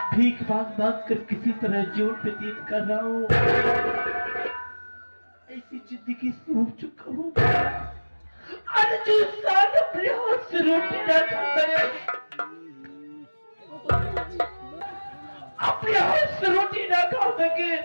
भीख मांग मांग कर किसी तरह जीवन व्यतीत कर रहा हूँ। ऐसी जिंदगी से हो चुका हूँ, और जो इंसान अपने हाथ से रोटी ना खाता है, अपने हाथ से रोटी ना खा सके,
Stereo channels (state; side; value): inverted; both; correlation -1.00